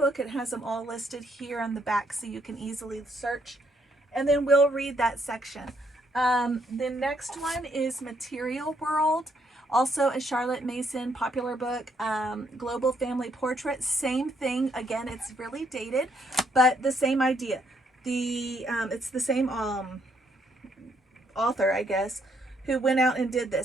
It has them all listed here on the back so you can easily search. And then we'll read that section. The next one is Material World, also a Charlotte Mason popular book. Global Family Portrait, same thing. Again, it's really dated, but the same idea. It's the same author, I guess, who went out and did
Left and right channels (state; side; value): normal; both; correlation 0.72